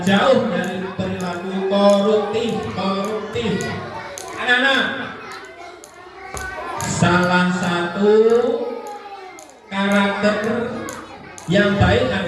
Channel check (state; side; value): identical; both; correlation 1.00